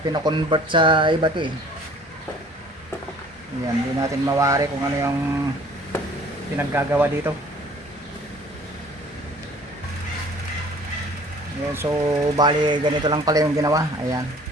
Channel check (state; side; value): normal; both; correlation 0.51